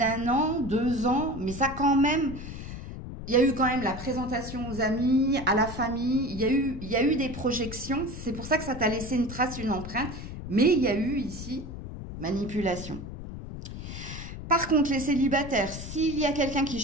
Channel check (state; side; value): noise; left; rumble, 9 dB below the sound